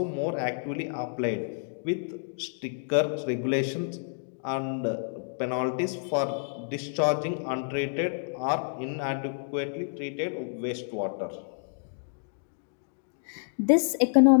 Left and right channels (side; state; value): right; silent; digital silence